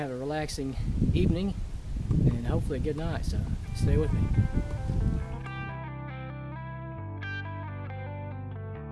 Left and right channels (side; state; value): both; identical; correlation 1.00